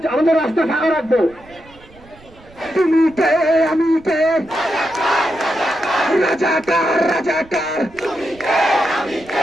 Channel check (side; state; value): right; noise; rumble, 25 dB below the sound